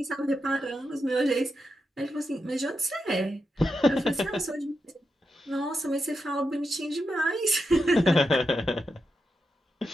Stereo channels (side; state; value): both; normal; correlation 0.87